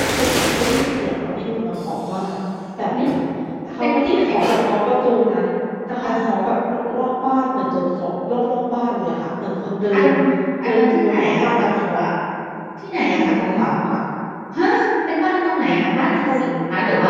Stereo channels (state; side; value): identical; both; correlation 1.00